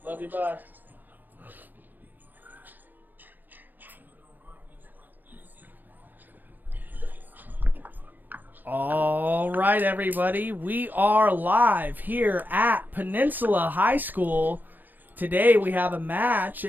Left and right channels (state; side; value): late; left; 0.087 ms